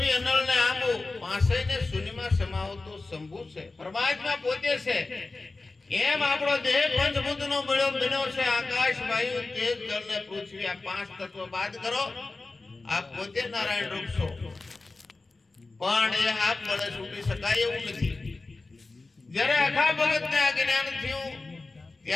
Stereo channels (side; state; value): right; quieter; 3.5 dB